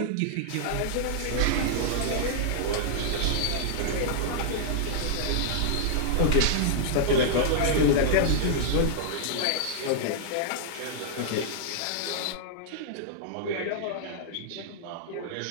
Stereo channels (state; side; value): different; both; correlation -0.01